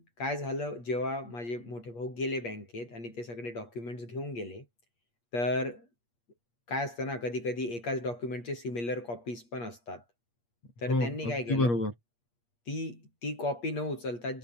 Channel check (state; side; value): late; right; 8.5 ms